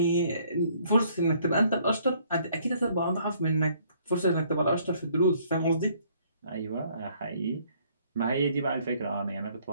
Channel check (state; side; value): inverted; both; correlation -0.63